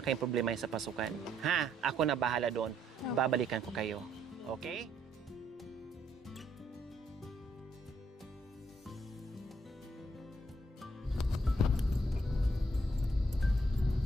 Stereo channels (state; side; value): normal; both; correlation 0.71